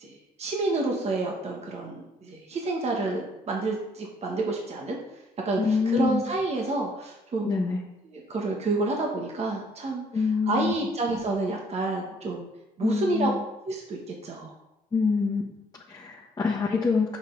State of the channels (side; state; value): both; normal; correlation 0.62